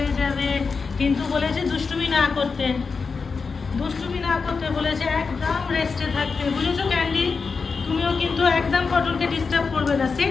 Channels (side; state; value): right; quieter; 4.9 dB